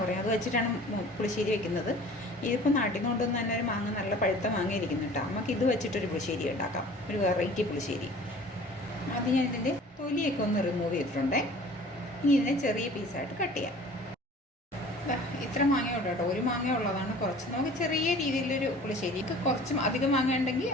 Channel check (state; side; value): normal; both; correlation 0.46